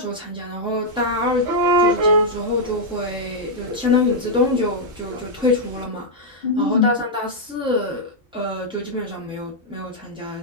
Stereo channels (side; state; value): both; normal; correlation -0.04